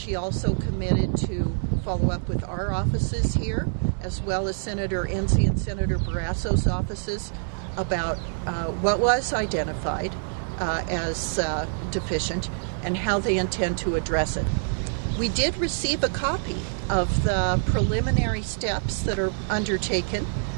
also committed to follow up with our offices here, as well as Senator Enzi and Senator Barrasso's offices, about what was identified as deficient and how they intend to address it. We did receive a copy of the preliminary steps that are undertaken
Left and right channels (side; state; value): left; silent; digital silence